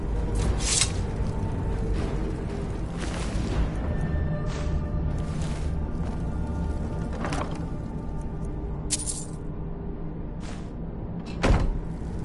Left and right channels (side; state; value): both; identical; correlation 1.00